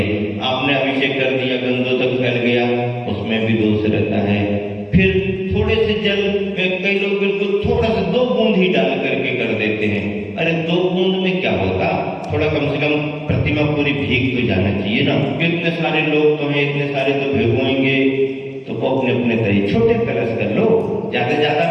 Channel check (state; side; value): identical; both; correlation 1.00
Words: आपने अभिषेक कर दिया, गंदोदक फैल गया, उसमें भी दोष रहता है। फिर थोड़े से जल, कई लोग बिल्कुल थोड़ा सा 2 बूंद ही डाल करके कर देते हैं। अरे 2 बूंद में क्या होगा, थोड़ा कम से कम प्रतिमा पूरी भीग तो जाना चाहिए ना। इतने सारे लोग तो हैं, इतने सारे तो भिगोएंगे, तो वो अपने अपने तरीके छोटे कलश कर लो,